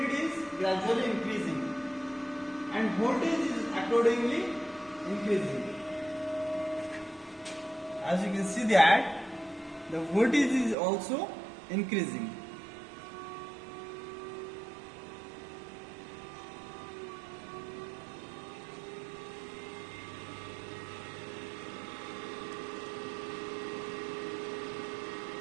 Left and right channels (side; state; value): left; drops out; at 10.8 s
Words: is gradually increasing, and voltage is accordingly increasing. As you can see that the voltage is also increasing.